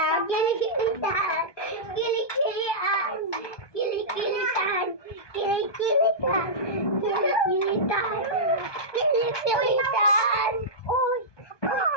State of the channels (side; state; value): right; late; 1.2 ms